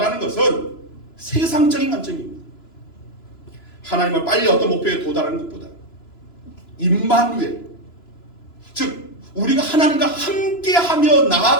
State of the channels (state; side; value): late; right; 3.0 ms